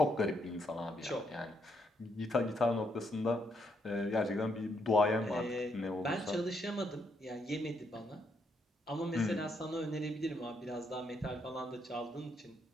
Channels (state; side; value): normal; both; correlation 0.75